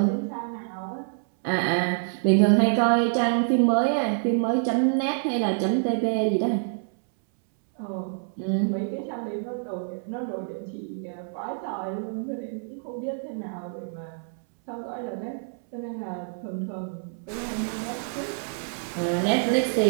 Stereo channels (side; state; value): left; silent; 60 dB below the other